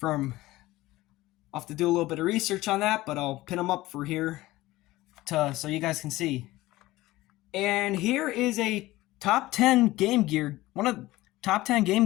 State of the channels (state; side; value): quieter; right; 17.9 dB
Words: I'll have to do a little bit of research on that, but I'll pin them up for here so you guys can see. And here is a top 10 Game Gear, one of the top 10 Game